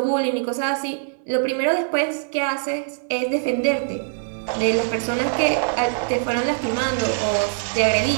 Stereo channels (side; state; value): left; silent; digital silence